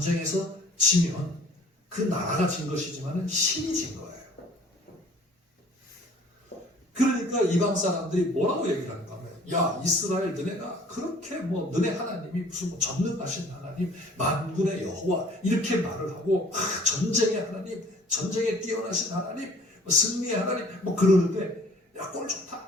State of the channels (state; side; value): normal; both; correlation 0.52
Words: 지면 그 나라가 진 것이지만 신이 진 거예요. 그러니까 이방 사람들이 뭐라고 얘기를 하는가 하면 야 이스라엘 너네가 그렇게 너네 하나님이 무슨 전능하신 하나님 만군의 여호와 이렇게 말을 하고 전쟁의 하나님 전쟁에 뛰어나신 하나님 승리의 하나님 그러는데 야 꼴